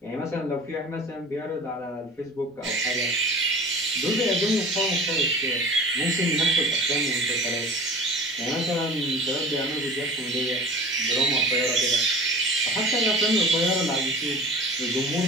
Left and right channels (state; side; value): normal; both; correlation 0.39